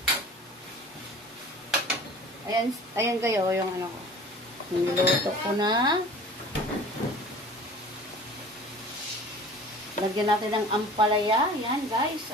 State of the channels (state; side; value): normal; both; correlation 0.43